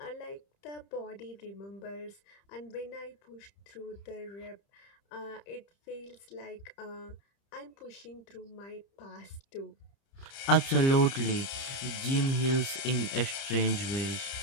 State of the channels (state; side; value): late; right; 30 ms